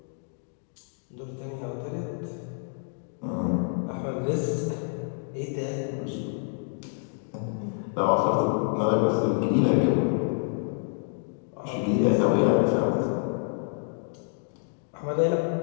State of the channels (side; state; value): right; silent; 59 dB below the other